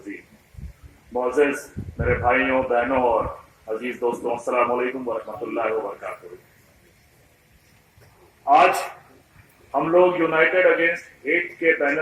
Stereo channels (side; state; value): both; identical; correlation 1.00